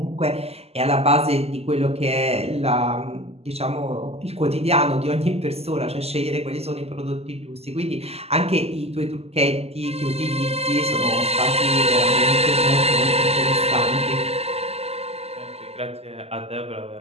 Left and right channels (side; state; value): left; late; 0.29 ms